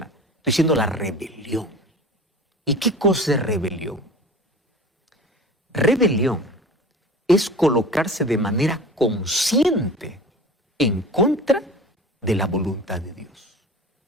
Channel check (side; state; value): both; normal; correlation 0.38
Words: Estoy diciendo la rebelión. ¿Y qué cosa es rebelión? Rebelión es colocarse de manera consciente en contra de la voluntad de Dios.